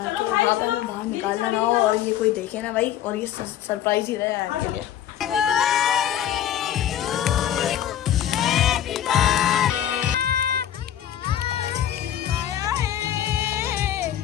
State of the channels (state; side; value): quieter; right; 10.8 dB